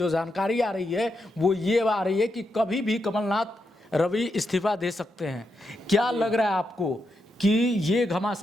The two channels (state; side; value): normal; both; correlation 0.84